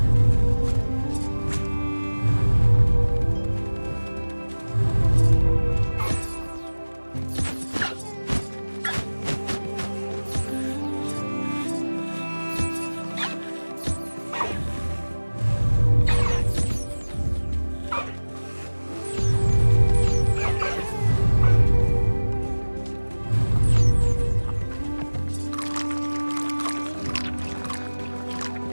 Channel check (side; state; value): both; inverted; correlation -1.00